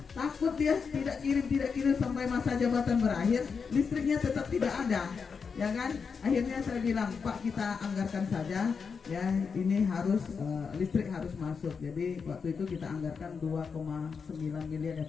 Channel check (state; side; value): quieter; right; 5.7 dB